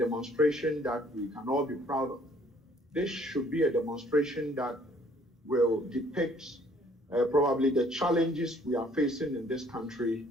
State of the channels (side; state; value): both; normal; correlation 0.60